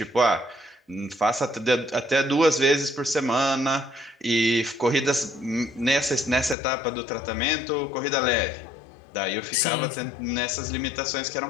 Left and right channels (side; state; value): right; drops out; at 6.6 s